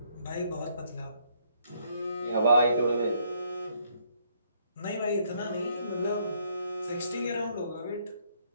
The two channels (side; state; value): both; inverted; correlation -0.69